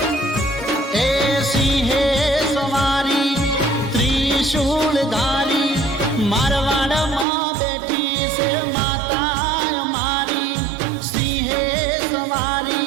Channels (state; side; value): drops out; left; at 7.2 s